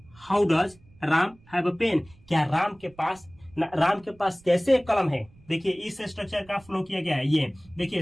Ram have a pen, क्या राम के पास कैसे एक कलम है। देखिए इस स्ट्रक्चर का फ्लो किया गया है। ये देखिए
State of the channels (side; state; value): right; noise; rumble, 27 dB below the sound